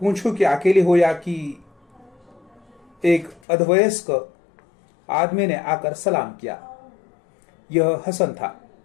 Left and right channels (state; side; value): drops out; right; at 3.4 s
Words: कि अकेली हो या कि एक अधवयस्क आदमी ने आकर सलाम किया। यह हसन था।